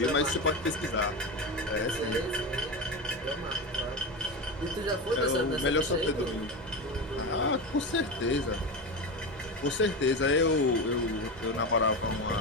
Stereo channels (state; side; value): normal; both; correlation 0.20